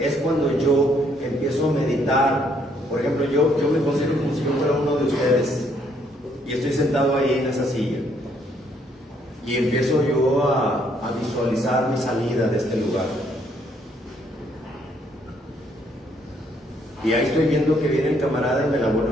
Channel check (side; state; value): both; normal; correlation 0.69